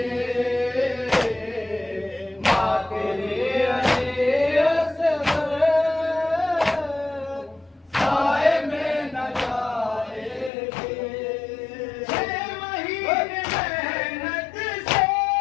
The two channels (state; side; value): drops out; right; at 10.5 s